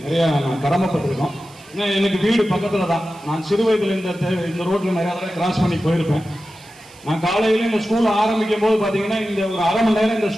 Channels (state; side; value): noise; right; hiss, 25 dB below the sound